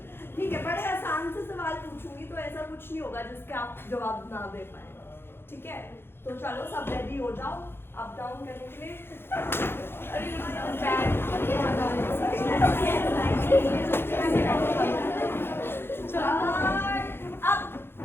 ठीक है, बड़े आसान से सवाल पूछूंगी तो ऐसा कुछ नहीं होगा जिसके आप जवाब ना दे पाए, ठीक है? तो चलो सब रेडी हो जाओ अप डाउन करने के लिए।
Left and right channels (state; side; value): late; right; 0.11 ms